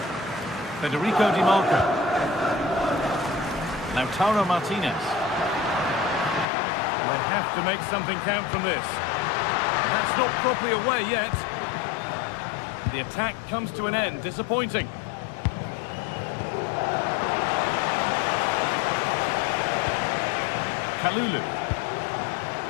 Federico Di Marco. Lautaro Martinez. They have to make something count from this. That's not properly away yet. The attack comes to an end. Disappointing. Kalulu.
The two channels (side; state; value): right; drops out; at 6.5 s